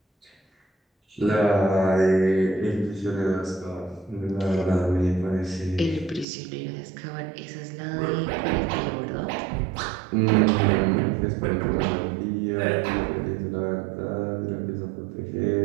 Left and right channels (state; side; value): drops out; left; at 6.2 s